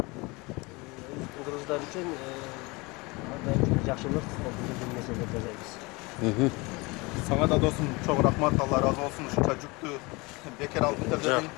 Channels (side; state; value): right; quieter; 25.3 dB